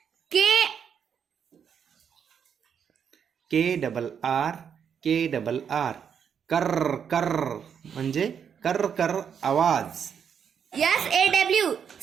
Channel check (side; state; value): left; quieter; 7.6 dB